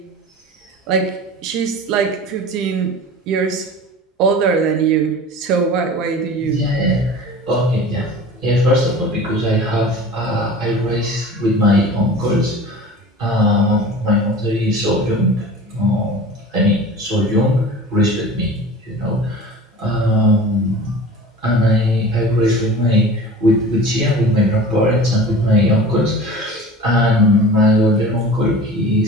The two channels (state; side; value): normal; both; correlation 0.38